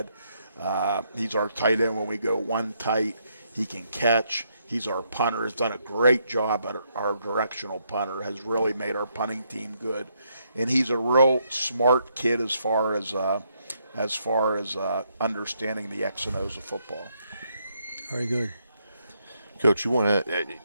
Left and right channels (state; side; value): inverted; both; correlation -0.75